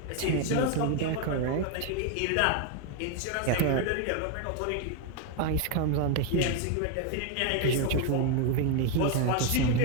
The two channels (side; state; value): both; different; correlation 0.01